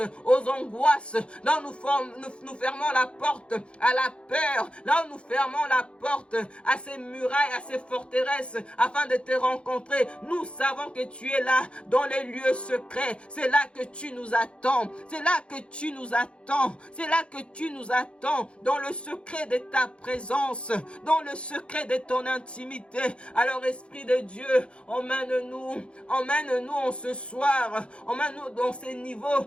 aux angoisses, là où nous fermons la porte à la peur, là où nous fermons la porte à ces murailles, à ces forteresses, afin de te rencontrer. Nous savons que tu es là dans les lieux secrets. C'est là que tu nous attends. C'est là que tu nous attends. C'est là que tu nous attends, dans le secret de ta présence, dans le secret de ton intimité. Alors, Esprit de Dieu, emmène-nous en ce soir, emmène-nous dans ces niveaux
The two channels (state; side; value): late; right; 0.058 ms